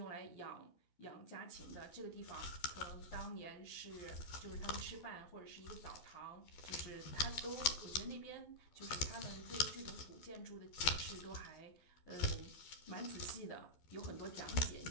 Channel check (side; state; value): right; late; 12 ms